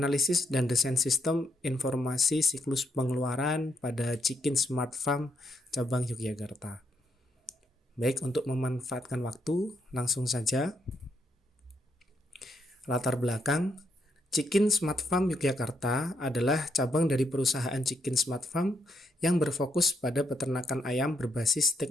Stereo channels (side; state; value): both; normal; correlation 0.77